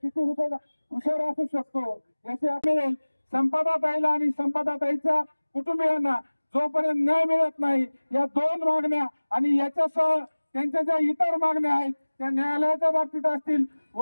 हुशार असू शकतो याचे आपले संपदाताईला आणि संपदाताईच्या कुटुंबियांना जोपर्यंत न्याय मिळत नाही, या दोन मागण्या आणि याच्यासह त्यांच्या ज्या इतर मागण्या आहेत त्या न्यायालयाच्या बाबतीत असतील,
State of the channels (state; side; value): inverted; both; correlation -1.00